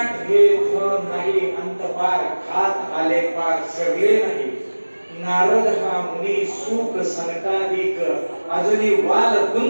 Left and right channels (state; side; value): inverted; both; correlation -1.00